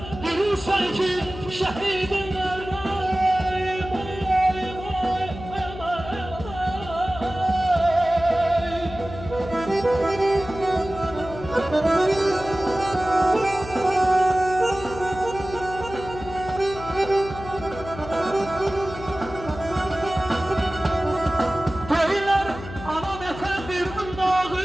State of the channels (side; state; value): left; noise; hum, 12 dB below the sound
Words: bilirsen ki şehidim nerede.